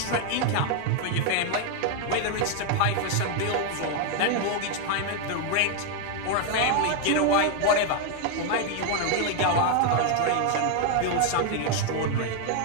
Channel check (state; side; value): different; both; correlation 0.00